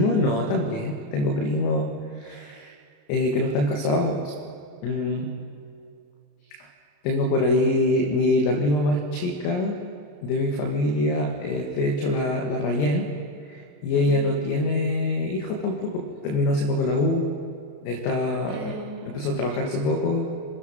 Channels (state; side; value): late; right; 28 ms